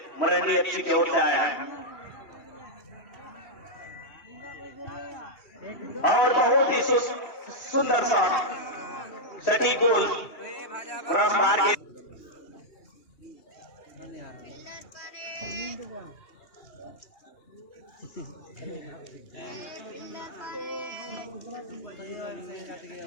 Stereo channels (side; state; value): right; late; 2.8 ms